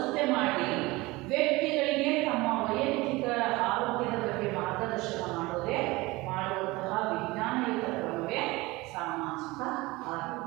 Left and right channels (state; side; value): quieter; left; 21.7 dB